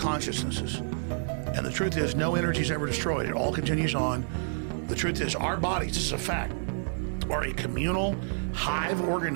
And the truth is, no energy is ever destroyed. It all continues on. The truth is, our bodies, this is a fact, are a communal hive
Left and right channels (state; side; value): silent; left; digital silence